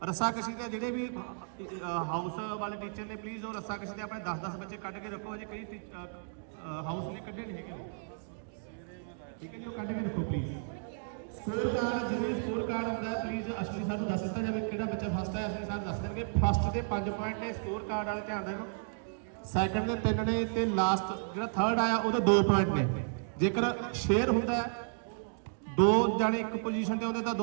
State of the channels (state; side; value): silent; left; digital silence